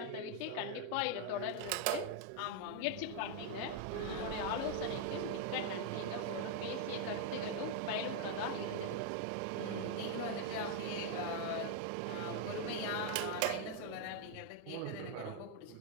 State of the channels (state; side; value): different; both; correlation 0.00